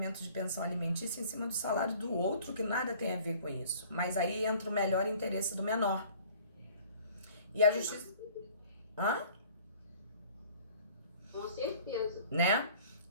de pensão alimentícia em cima do salário do outro, que nada tem a ver com isso. Mas aí entra o melhor interesse do menor. E a justiça... Hã? Com certeza. Né?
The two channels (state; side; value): inverted; both; correlation -0.51